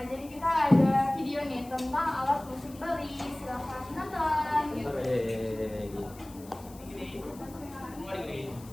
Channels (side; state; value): left; noise; hiss, 21 dB below the sound